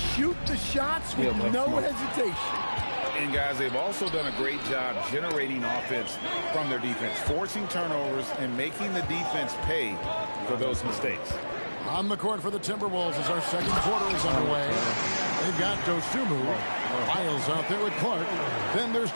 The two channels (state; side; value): inverted; both; correlation -1.00